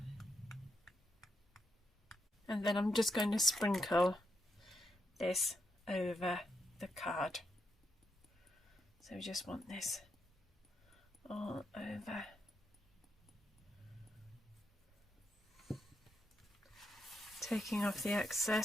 And then I'm just going to sprinkle this over the card. So we just want this all over. Taking off the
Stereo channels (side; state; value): both; normal; correlation 0.82